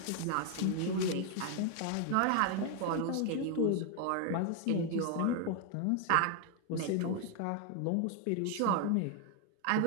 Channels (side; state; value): both; different; correlation 0.01